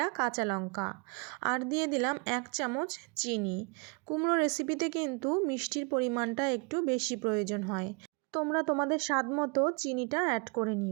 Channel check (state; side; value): quieter; left; 33.1 dB